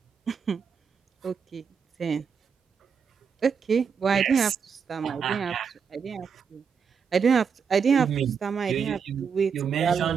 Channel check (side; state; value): left; quieter; 6.4 dB